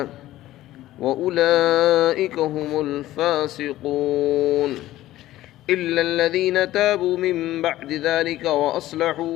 وأولئك هم الفاسقون إلا الذين تابوا من بعد ذلك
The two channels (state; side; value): quieter; right; 15.1 dB